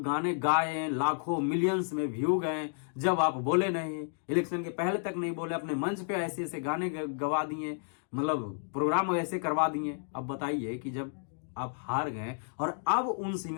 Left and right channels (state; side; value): silent; right; digital silence